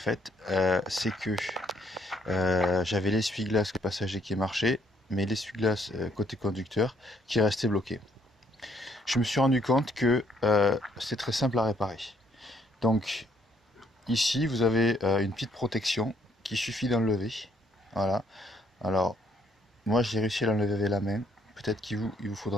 c'est que j'avais l'essuie-glace passager qui marchait, mais l'essuie-glace côté conducteur qui restait bloqué. Je me suis rendu compte que c'est très simple à réparer. Donc, ici, vous avez une petite protection qu'il suffit d'enlever. Voilà. Alors, moi, j'ai réussi à l'enlever avec la main. Peut-être il vous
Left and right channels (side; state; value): both; normal; correlation 0.68